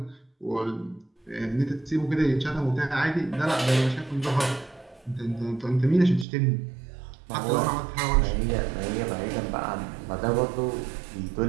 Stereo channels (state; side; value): drops out; left; at 6.2 s